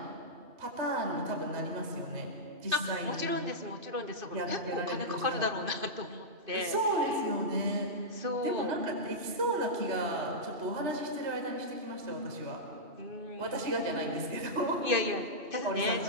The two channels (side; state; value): left; late; 2.5 ms